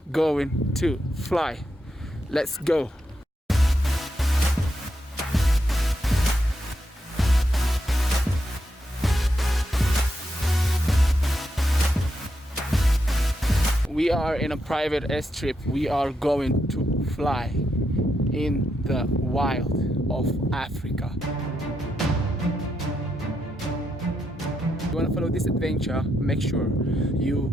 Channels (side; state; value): both; normal; correlation 0.82